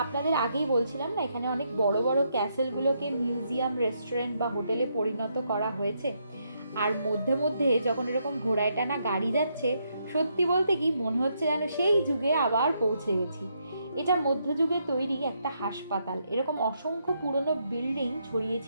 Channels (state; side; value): inverted; both; correlation -0.77